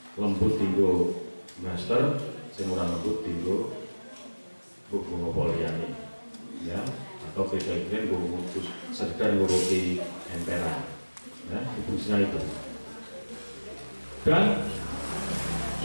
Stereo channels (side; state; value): both; inverted; correlation -1.00